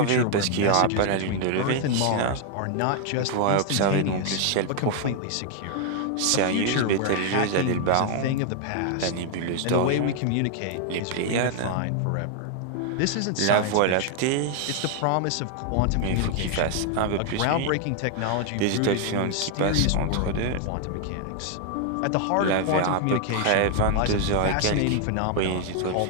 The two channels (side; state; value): both; different; correlation 0.00